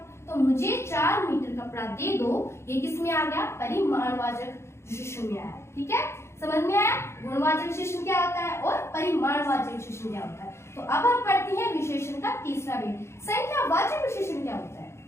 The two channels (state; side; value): late; right; 0.13 ms